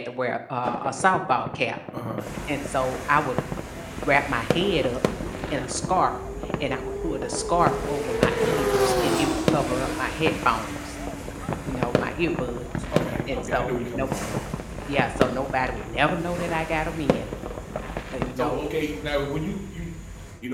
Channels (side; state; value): both; identical; correlation 1.00